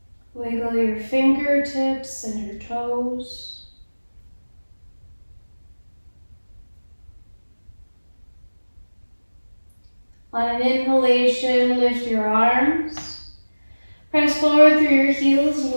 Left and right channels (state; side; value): inverted; both; correlation -1.00